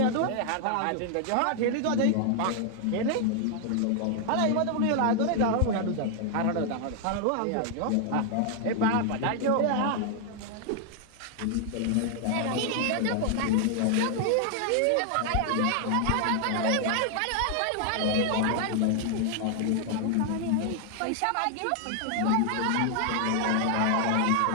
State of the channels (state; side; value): different; both; correlation 0.00